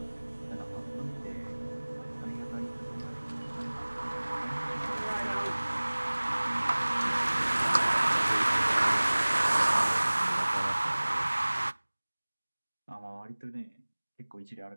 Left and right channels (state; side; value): inverted; both; correlation -1.00